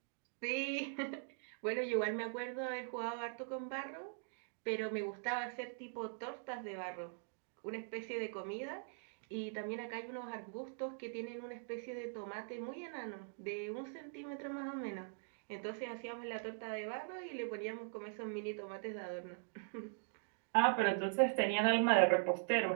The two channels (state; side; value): silent; left; digital silence